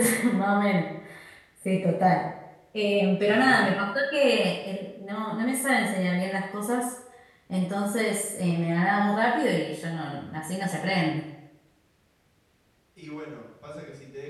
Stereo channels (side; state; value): both; identical; correlation 1.00